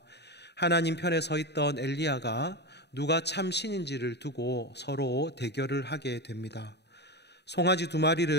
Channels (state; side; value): late; right; 0.49 ms